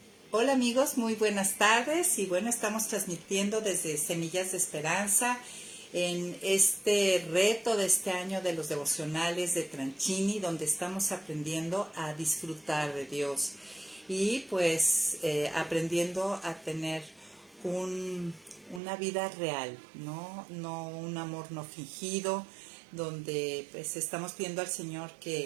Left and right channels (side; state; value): left; drops out; at 18.8 s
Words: hola amigos, muy buenas tardes y bueno, estamos transmitiendo desde Semillas de Esperanza en este reto de este año de los devocionales de Tranchini, donde estamos aprendiendo a disfrutar de Dios y pues aprendiendo a tener una vida real, no un amor no fingido, donde pues estamos pidiendo al Señor